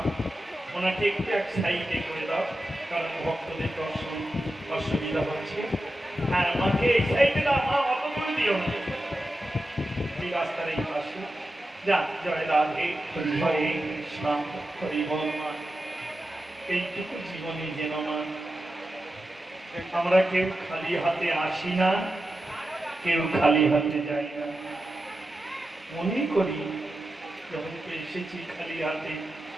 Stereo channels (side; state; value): both; normal; correlation 0.91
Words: ওনাকে একটু এক সাইডে করে দাও, কারণ ভক্তদের দর্শন অসুবিধা হচ্ছে। হ্যাঁ, মাকে এই সাইডে দাও মা, অত করে দিও না, এই রাস্তার এই পাশে। যা, জয় রাধে, হরে কৃষ্ণ হরি বল মা। এইটুকু জীবনে যেন মা আমরা কেউ খালি হাতে আসি না, কেউ খালি হাতে যাই না। মনে করি যখন এসেছি খালি হাতে,